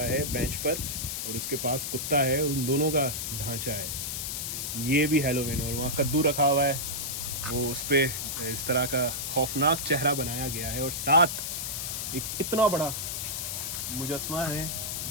है बेंच पर और उसके पास कुत्ता है, उन दोनों का ढांचा है। ये भी हैलोवीन। और वहाँ कद्दू रखा हुआ है, वो उस पर इस तरह का खौफनाक चेहरा बनाया गया है और साथ एक इतना बड़ा मुजस्मा है,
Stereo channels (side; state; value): left; noise; hiss, 3 dB below the sound